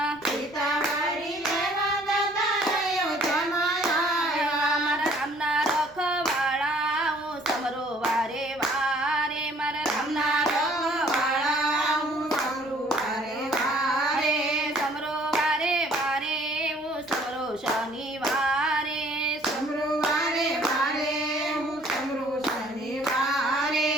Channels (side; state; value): right; noise; rumble, 30 dB below the sound